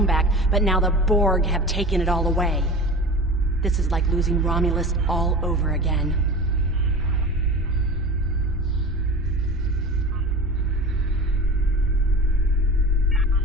back, but now the Borg have taken it all away. This is like losing Romulus all over again.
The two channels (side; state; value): both; normal; correlation 0.34